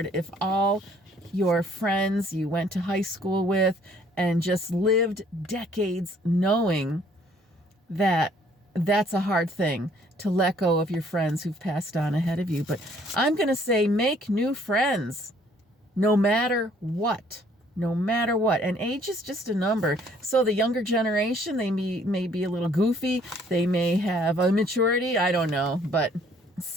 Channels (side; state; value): both; normal; correlation 0.61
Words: if all your friends you went to high school with and just lived decades knowing that that's a hard thing to let go of your friends who've passed on ahead of you. But I'm going to say, make new friends no matter what. No matter what. And age is just a number. So the younger generation, they may be a little goofy. They may have immaturity. I don't know. But